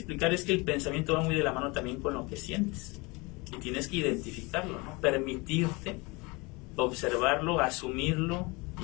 es que el pensamiento va muy de la mano también con lo que sientes. Y tienes que identificarlo, ¿no? Permitirte observarlo, asumirlo,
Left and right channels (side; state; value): right; quieter; 26.3 dB